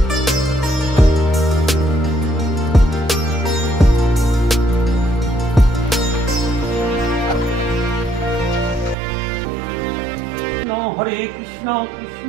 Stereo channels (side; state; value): left; drops out; at 9.0 s